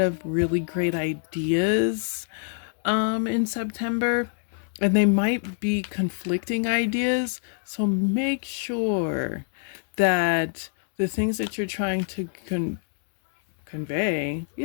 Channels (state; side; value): silent; right; 61 dB below the other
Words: really great ideas in September, and they might be conflicting ideas. So make sure that the things that you're trying to convey,